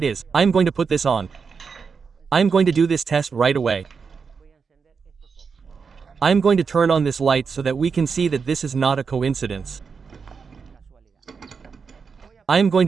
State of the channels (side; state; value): left; quieter; 5.6 dB